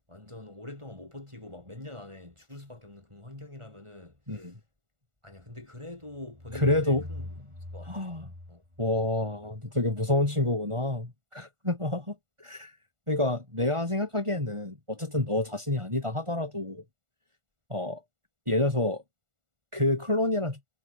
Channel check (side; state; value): left; late; 1.4 ms